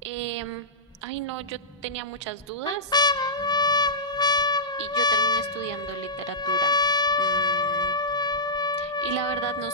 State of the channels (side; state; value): both; normal; correlation -0.14